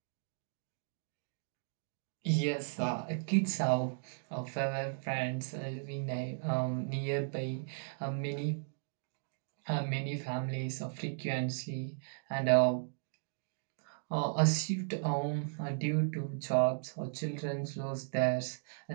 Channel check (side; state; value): left; silent; digital silence